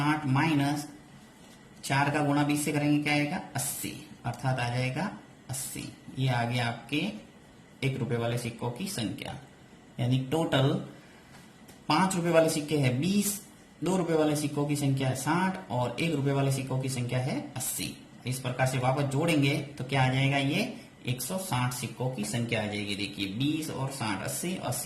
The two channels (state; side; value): identical; both; correlation 1.00